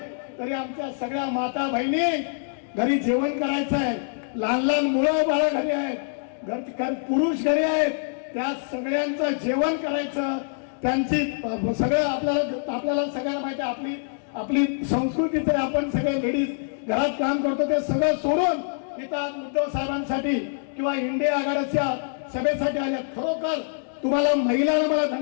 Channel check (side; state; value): right; silent; digital silence